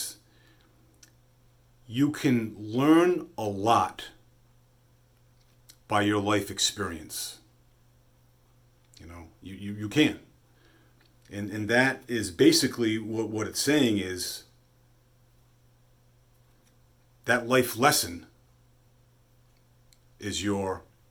you can learn a lot by your life experience. You can. And that is basically what it's saying is that life lesson is your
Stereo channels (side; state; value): both; identical; correlation 1.00